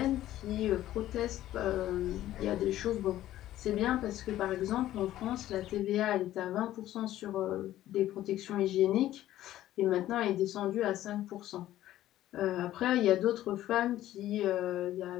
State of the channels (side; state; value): right; quieter; 13.7 dB